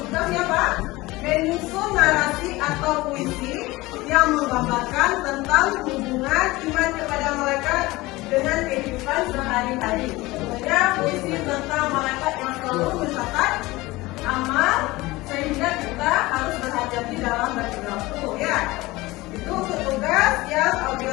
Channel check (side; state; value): right; quieter; 20.3 dB